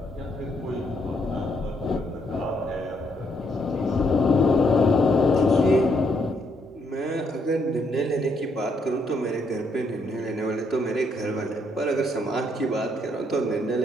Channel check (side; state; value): both; normal; correlation 0.73